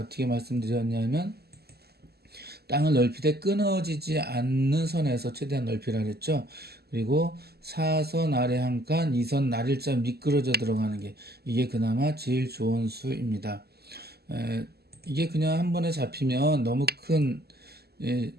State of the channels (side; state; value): left; late; 0.46 ms